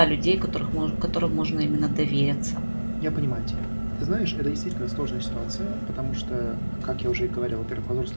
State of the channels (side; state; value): both; inverted; correlation -1.00